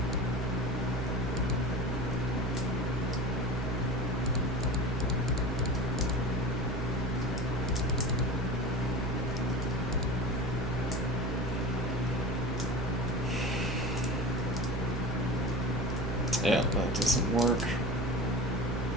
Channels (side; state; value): both; normal; correlation 0.33